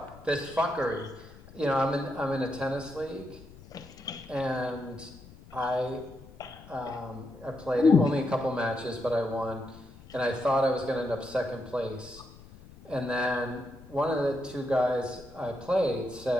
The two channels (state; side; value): noise; left; rumble, 20 dB below the sound